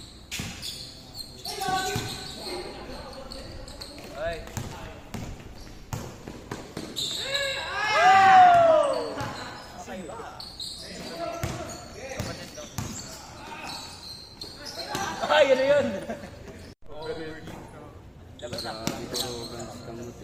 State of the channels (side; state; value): both; identical; correlation 1.00